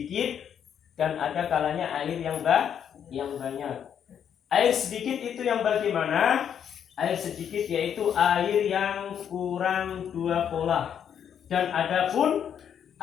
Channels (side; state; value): right; quieter; 8.6 dB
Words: dan ada kalanya air yang banyak. Air sedikit itu yang bagaimana? Air sedikit yaitu air yang kurang 2 polah. Dan adapun